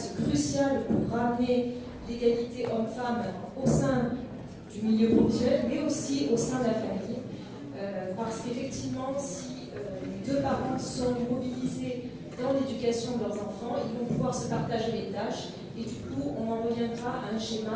crucial pour ramener l'égalité homme-femme au sein du milieu professionnel, mais aussi au sein de la famille. Parce qu'effectivement, si les deux parents sont mobilisés dans l'éducation de leurs enfants, ils vont pouvoir se partager les tâches et du coup on en reviendra à un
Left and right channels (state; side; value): identical; both; correlation 1.00